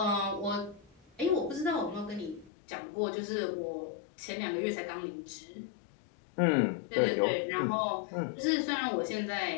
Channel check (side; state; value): right; drops out; at 2.5 s